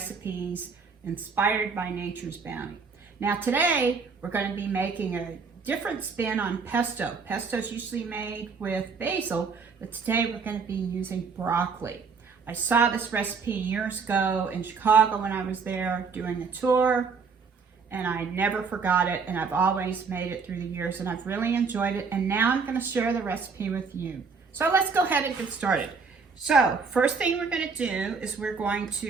inspired by nature's bounty. Now today we're going to be making a different spin on pesto. Pesto is usually made with basil, but today we're going to be using broccoli. I saw this recipe years ago in Chicago when I was there doing a tour, and I never forgot it, and I've always made it through the years, and I've really enjoyed it, and now I'm going to share the recipe with you. So let's go ahead and get started. So first thing we're going to do is we're going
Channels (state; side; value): quieter; left; 5.1 dB